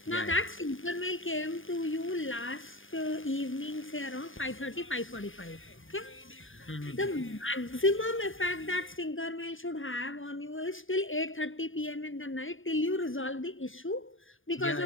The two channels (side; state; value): right; late; 0.58 ms